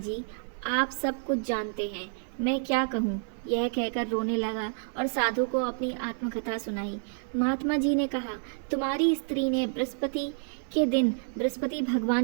आप सब कुछ जानते हैं, मैं क्या कहूँ। यह कहकर रोने लगा और साधु को अपनी आत्मकथा सुनाई। महात्मा जी ने कहा, तुम्हारी स्त्री ने बृहस्पति के दिन बृहस्पति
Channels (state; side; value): silent; left; digital silence